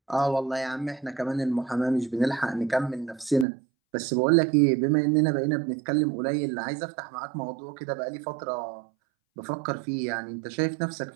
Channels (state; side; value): drops out; left; at 3.5 s